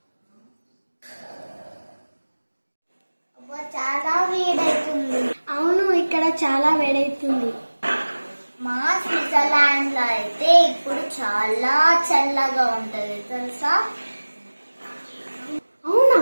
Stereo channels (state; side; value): inverted; both; correlation -1.00